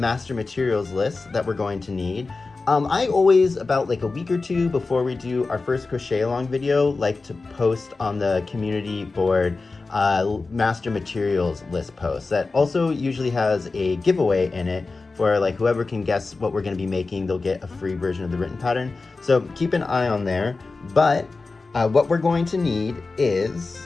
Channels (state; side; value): quieter; right; 3.8 dB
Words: materials list that we're going to need. I always, about like a week or two before we do our first crochet along video, like to post on the community board master materials list post that also usually has a giveaway in it for like whoever can guess what we're going to be making. They'll get a free version of the written pattern, so keep an eye on there. But what we're going to need